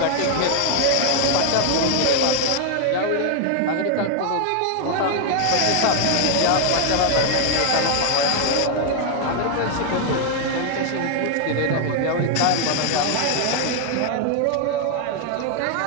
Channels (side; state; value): both; different; correlation 0.00